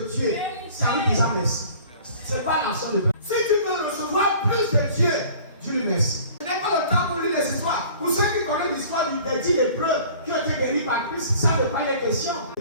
Dieu, c'est à lui déjà merci. Ce n'est pas l'action de Dieu. Si tu veux recevoir plus de Dieu, dis-lui merci. Ce n'est pas le temps pour lire les histoires. Pour ceux qui connaissent l'histoire des 10 lépreux qui ont été guéris par Christ, ça ne pas les questions.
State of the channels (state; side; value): inverted; both; correlation -0.48